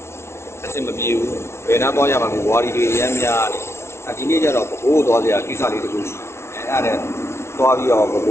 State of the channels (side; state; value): right; late; 0.13 ms